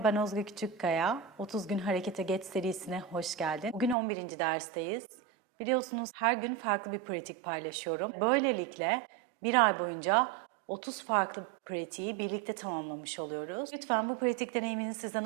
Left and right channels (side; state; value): left; drops out; at 4.0 s